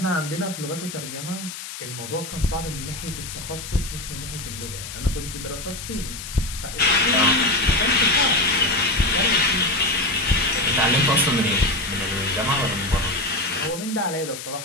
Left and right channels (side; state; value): left; noise; hiss, 10 dB below the sound